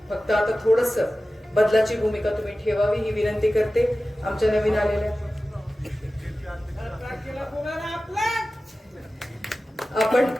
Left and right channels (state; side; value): normal; both; correlation 0.95